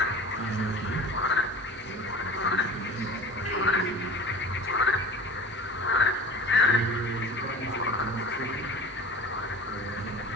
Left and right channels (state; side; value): normal; both; correlation 0.38